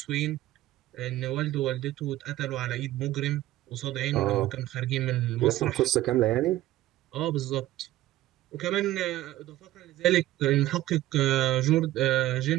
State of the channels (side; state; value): left; quieter; 15.3 dB